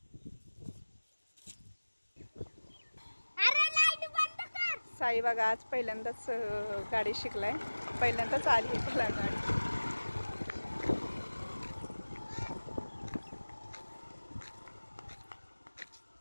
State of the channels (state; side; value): inverted; both; correlation -1.00